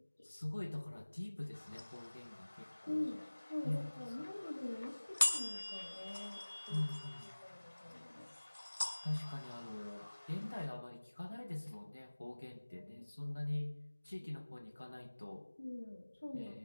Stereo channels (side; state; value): both; inverted; correlation -1.00